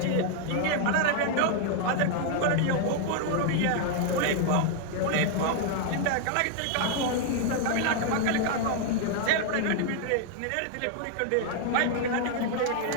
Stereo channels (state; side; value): different; both; correlation 0.00